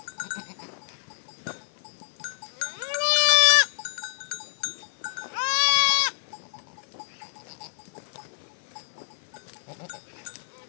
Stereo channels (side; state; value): right; silent; 55 dB below the other